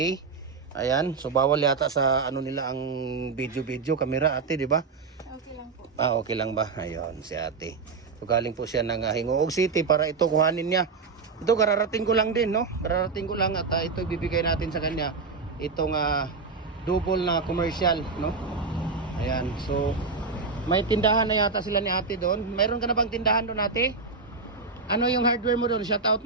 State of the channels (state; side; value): quieter; left; 4.6 dB